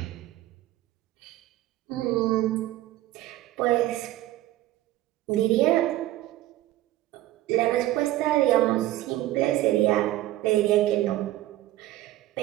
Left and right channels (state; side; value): quieter; left; 15.4 dB